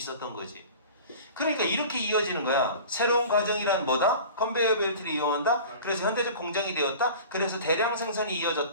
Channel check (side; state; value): both; inverted; correlation -0.39